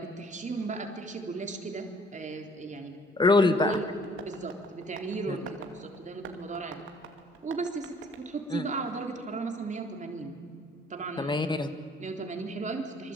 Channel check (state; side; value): normal; both; correlation 0.58